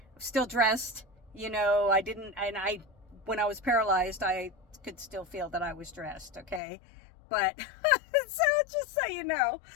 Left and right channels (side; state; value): right; drops out; at 6.6 s